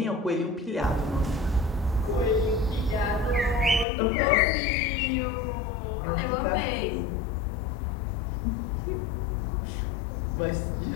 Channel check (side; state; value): right; drops out; at 3.9 s